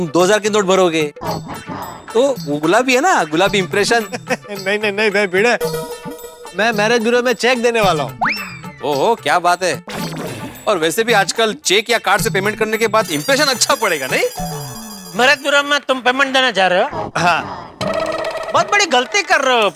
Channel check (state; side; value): identical; both; correlation 1.00